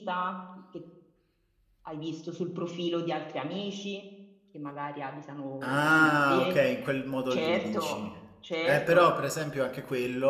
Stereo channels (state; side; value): identical; both; correlation 1.00